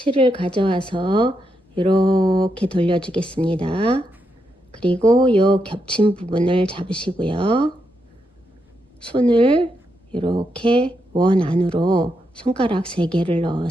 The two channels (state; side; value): normal; both; correlation 0.82